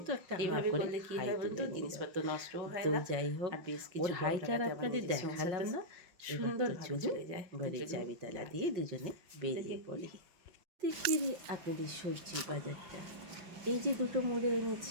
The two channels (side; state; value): left; late; 5.5 ms